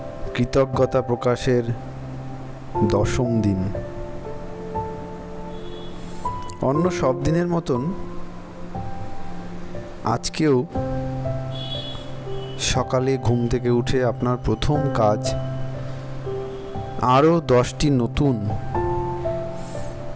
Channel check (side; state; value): both; identical; correlation 1.00